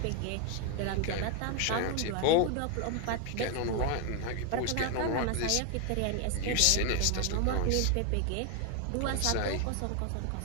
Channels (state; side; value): different; both; correlation 0.01